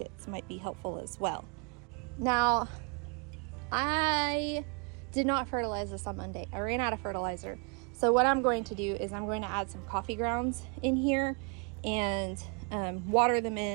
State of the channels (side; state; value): left; quieter; 35.1 dB